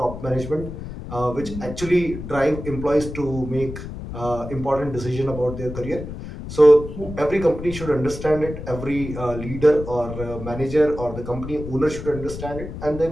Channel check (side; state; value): left; noise; rumble, 9 dB below the sound